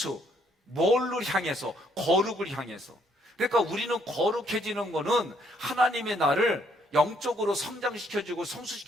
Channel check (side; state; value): both; normal; correlation 0.69